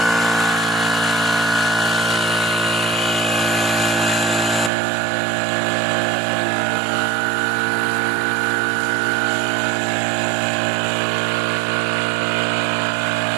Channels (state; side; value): drops out; left; at 4.7 s